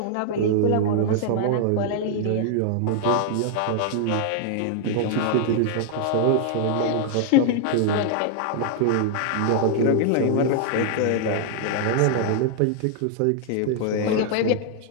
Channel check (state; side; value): different; both; correlation 0.00